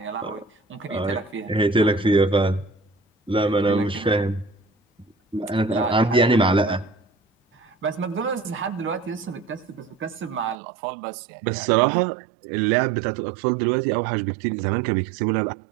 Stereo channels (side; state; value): left; drops out; at 10.6 s